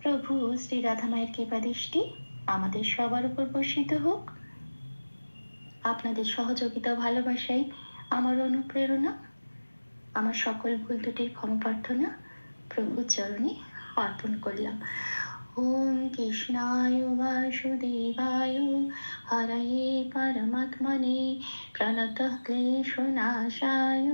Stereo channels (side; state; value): both; inverted; correlation -1.00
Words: প্রভু শ্রী রাধা মায়ের কৃপা দৃষ্টি আমাদের সবার উপর বর্ষিত হোক। আপনাদের সহযোগিতা ও ভালোবাসাই আমার অনুপ্রেরণা। আমার সকল ভুল ত্রুটির ক্ষমা প্রার্থনা প্রভুর চরণে অর্পণ করলাম। ওম কৃষ্ণায় বাসুদেবায় হরয়ে परमात्मने प्रणतः क्लेशनाशाय